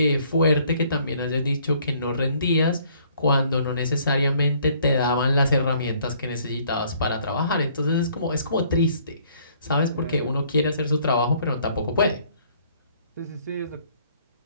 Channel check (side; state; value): both; inverted; correlation -0.61